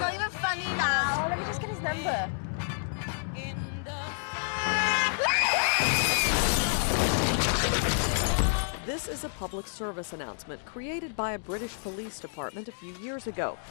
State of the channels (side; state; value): right; silent; digital silence